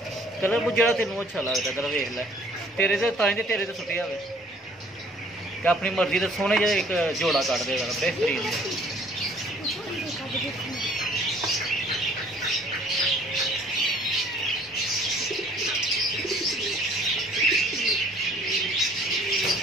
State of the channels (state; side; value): normal; both; correlation 0.56